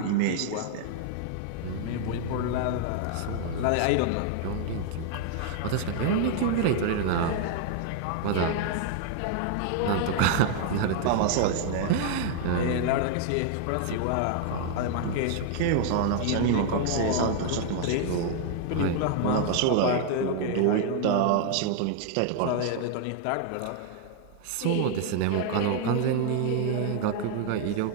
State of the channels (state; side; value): different; both; correlation 0.00